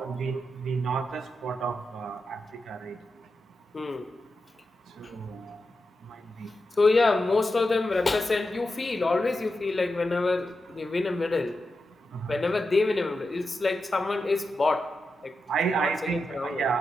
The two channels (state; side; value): normal; both; correlation 0.89